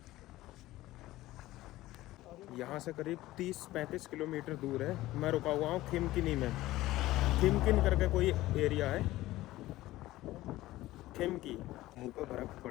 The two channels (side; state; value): right; quieter; 16.7 dB